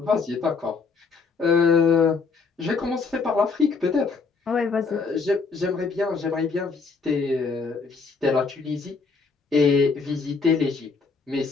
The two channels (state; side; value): quieter; right; 4.7 dB